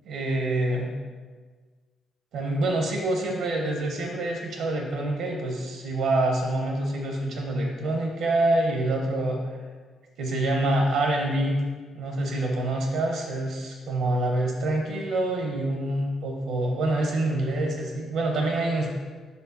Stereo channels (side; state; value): both; normal; correlation 0.77